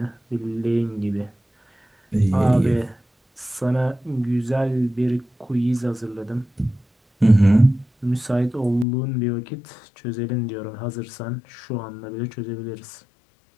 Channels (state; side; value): drops out; right; at 8.8 s